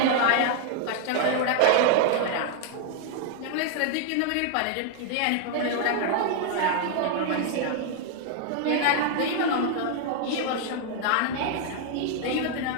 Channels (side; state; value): both; different; correlation 0.00